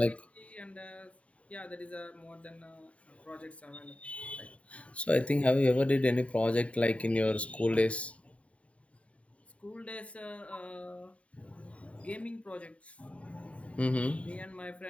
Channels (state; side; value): late; right; 0.065 ms